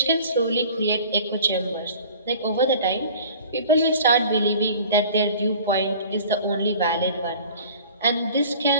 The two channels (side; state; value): both; inverted; correlation -0.44